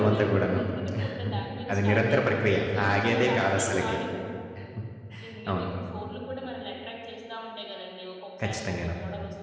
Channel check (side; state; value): both; identical; correlation 1.00